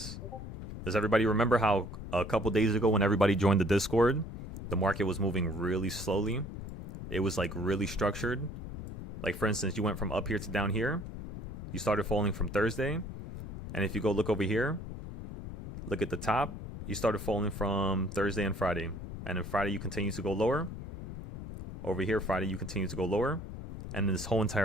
Does everybody remember how a couple days ago when everybody joined the Discord, the market was moving really slowly? It was like really structured. Like for instance, you went from up here to down here. You started falling from Thursday. And if you go look over here, look at the top, you started falling from Thursday and Friday. And then Friday you continue to go lower. Over here, Friday you continue to go lower. And this whole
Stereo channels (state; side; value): noise; left; rumble, 8 dB below the sound